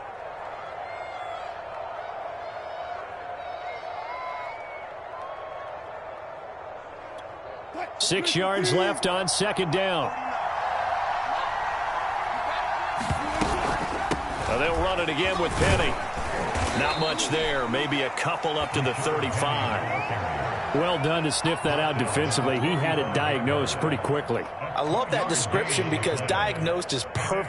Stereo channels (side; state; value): both; identical; correlation 1.00